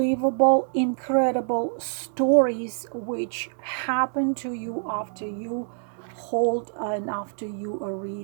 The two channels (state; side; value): silent; left; digital silence